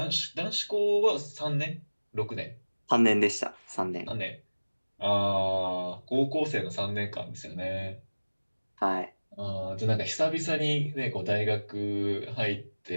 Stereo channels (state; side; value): inverted; both; correlation -1.00